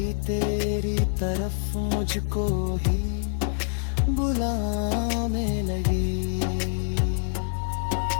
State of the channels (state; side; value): silent; right; digital silence